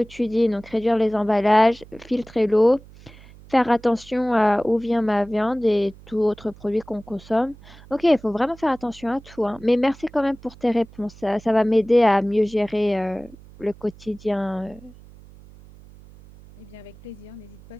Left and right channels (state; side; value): noise; right; hum, 22 dB below the sound